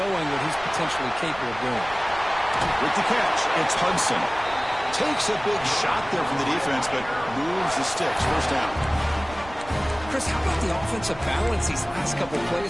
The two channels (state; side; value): noise; right; rumble, 17 dB below the sound